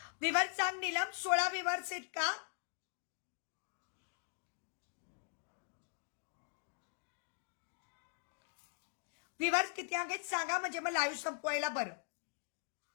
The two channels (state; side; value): silent; right; digital silence